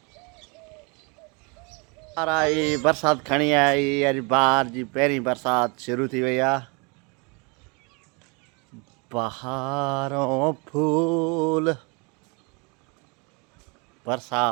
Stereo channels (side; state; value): left; quieter; 30.9 dB